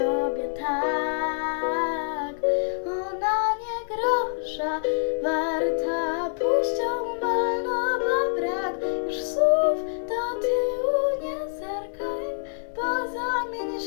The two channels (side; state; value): right; silent; 61 dB below the other